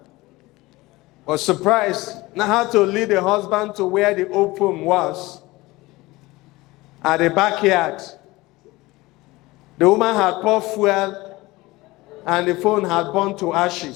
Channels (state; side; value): quieter; right; 20.5 dB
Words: was surprised, now had to lead the husband to where the old phone was, at the backyard. The woman had poured fuel and the phone had burned to